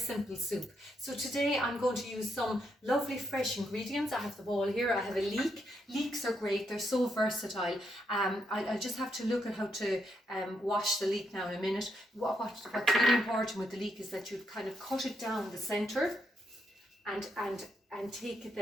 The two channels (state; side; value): normal; both; correlation 0.79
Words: soup. So today I'm going to use some lovely fresh ingredients. I have the bowl here, I have a leek. Leeks are great, they're so versatile. I'll just have to look at how to wash the leek now in a minute. What's really important with the leek is that you kind of cut it down the centre and take it